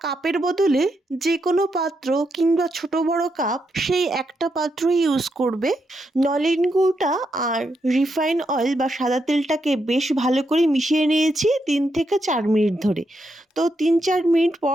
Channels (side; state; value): both; normal; correlation 0.82